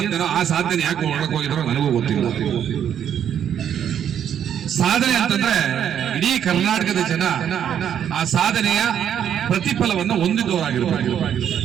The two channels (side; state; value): left; quieter; 9.3 dB